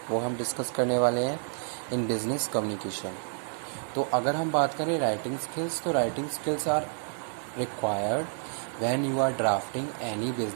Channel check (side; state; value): left; silent; 58 dB below the other